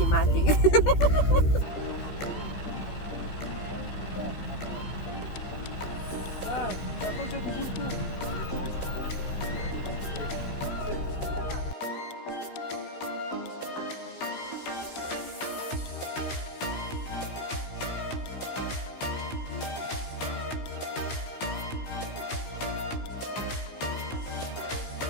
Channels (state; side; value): late; right; 15 ms